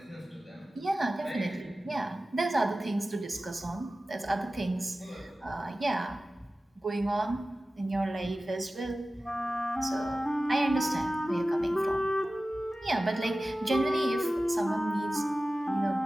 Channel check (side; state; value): both; normal; correlation 0.96